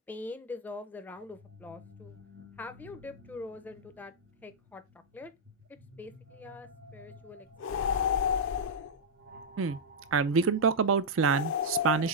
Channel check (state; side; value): normal; both; correlation -0.06